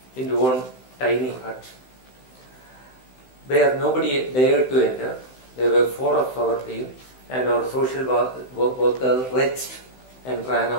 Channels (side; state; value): right; late; 16 ms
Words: into one tiny hut where nobody dared to enter. There were 4 of our team, and our social worker retched and ran